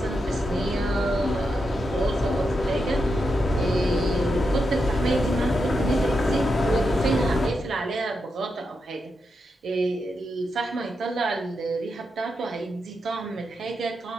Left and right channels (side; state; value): both; normal; correlation 0.86